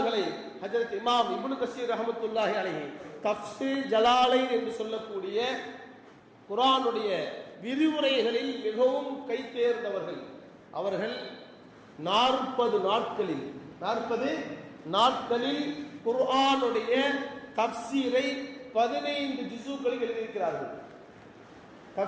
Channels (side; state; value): both; identical; correlation 1.00